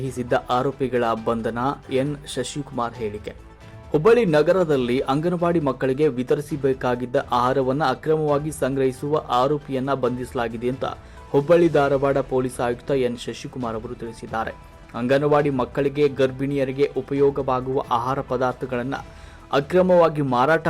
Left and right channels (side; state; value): both; identical; correlation 1.00